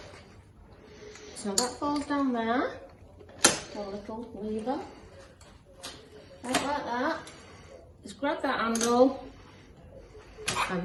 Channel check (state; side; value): identical; both; correlation 1.00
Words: So that falls down there, a little lever, like that. Just grab that handle